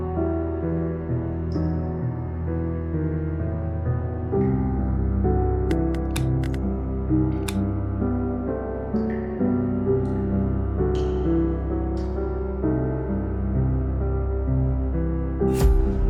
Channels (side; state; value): both; identical; correlation 1.00